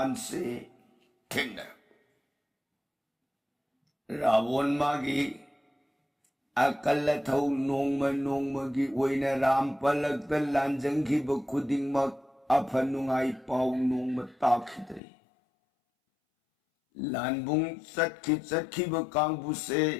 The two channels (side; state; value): right; drops out; at 15.0 s